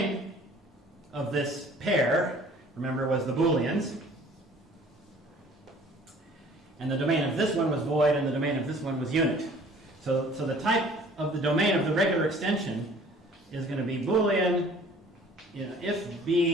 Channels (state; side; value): normal; both; correlation 0.51